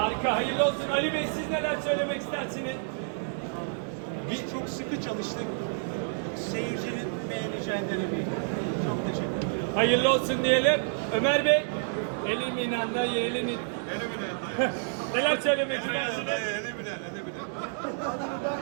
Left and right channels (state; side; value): silent; left; digital silence